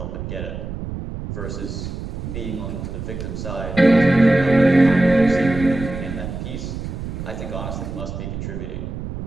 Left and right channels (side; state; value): right; noise; rumble, 7 dB below the sound